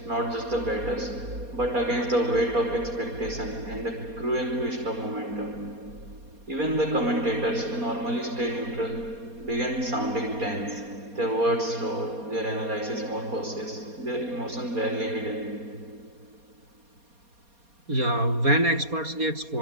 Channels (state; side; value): late; left; 4.2 ms